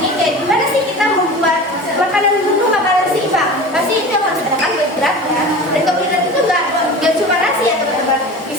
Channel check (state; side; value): normal; both; correlation 0.34